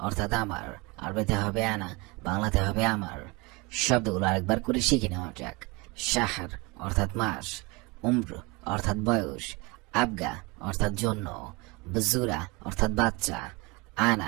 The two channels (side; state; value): left; quieter; 26.4 dB